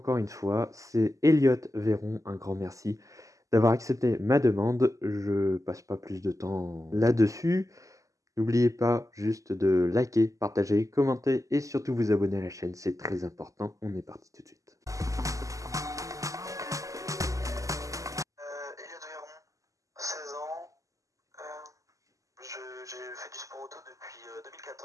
une fois, c'est Elliot Véron. Un grand merci d'avoir accepté ma demande. Je passe pas plus de temps là-dessus. N'oubliez pas juste de liker, partager, commenter et surtout vous abonner à la chaîne. C'est très important. On est parti tout de suite. Elliot Véron, 16 ans. J'ai fait du sport auto depuis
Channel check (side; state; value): left; late; 0.16 ms